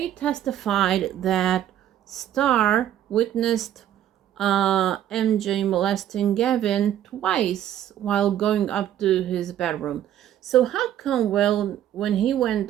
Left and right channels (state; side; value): quieter; left; 11.3 dB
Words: testified that Star witnessed MJ molesting Gavin twice while going up to his bedroom. So how come, when he went